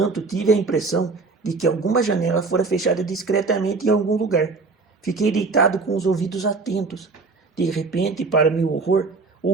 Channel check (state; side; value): quieter; left; 4.1 dB